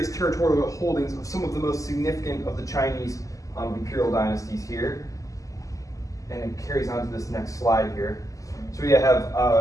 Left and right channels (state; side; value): late; right; 0.16 ms